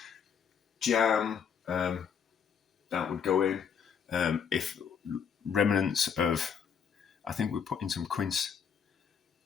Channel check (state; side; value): quieter; right; 7.2 dB